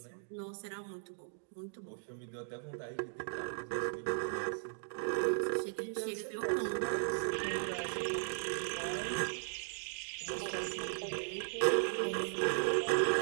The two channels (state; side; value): silent; left; digital silence